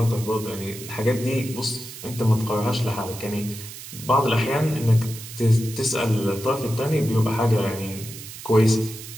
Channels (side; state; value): right; noise; hiss, 13 dB below the sound